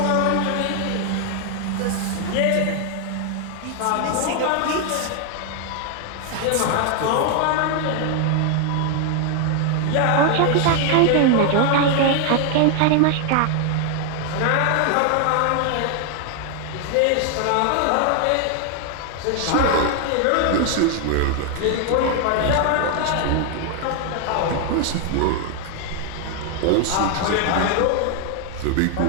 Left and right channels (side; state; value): both; different; correlation 0.00